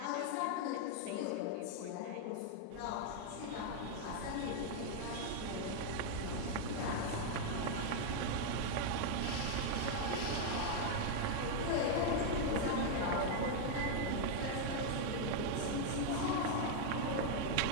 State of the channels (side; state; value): both; different; correlation 0.00